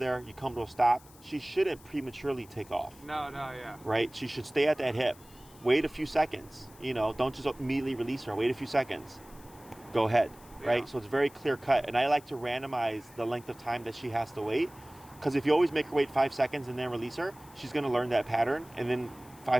you come to a stop, she shouldn't prematurely take off. No, yeah. Right? She should stay at that hip. Wait a few seconds. Don't just immediately release her. Wait a few seconds. Go ahead. Right? Yeah. So it's very clear cut. And I like to randomize the length of time that she has to wait. Because if you always make her wait 5 seconds and then release her, she's going to learn that pattern. And then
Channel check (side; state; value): left; noise; hiss, 24 dB below the sound